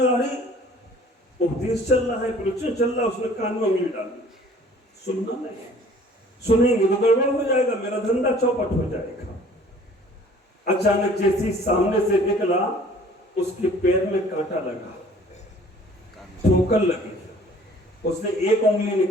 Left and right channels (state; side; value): normal; both; correlation 0.52